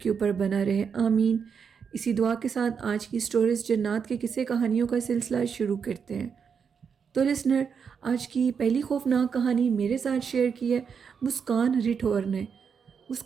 اوپر بنا رہے، آمین۔ اسی دعا کے ساتھ آج کی سٹوریز جنات کے قصے کہانیوں کا سلسلہ شروع کرتے ہیں۔ تو لسنر، آج کی پہلی خوفناک کہانی میرے ساتھ شیئر کی ہے مسکان رٹھور نے۔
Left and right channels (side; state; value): left; quieter; 6.5 dB